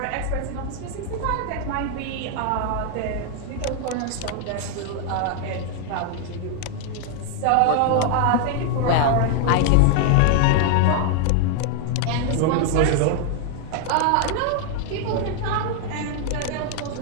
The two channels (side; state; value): both; different; correlation 0.00